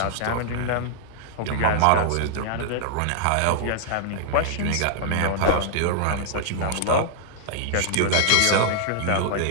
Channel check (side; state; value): both; different; correlation -0.01